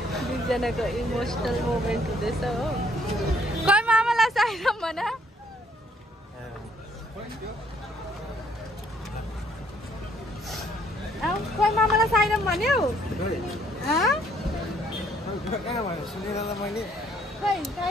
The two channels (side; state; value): both; normal; correlation 0.66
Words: दुईजनाको इमोसनल मोमेन्ट हुँदैछ हो। खै मामालाई साइरम भन। खै मामालाई साइरम भन्यौ? खै